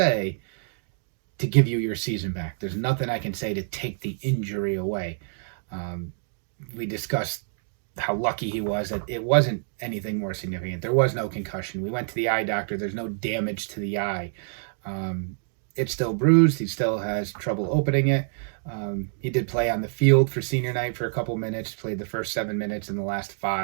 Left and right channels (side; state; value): left; silent; digital silence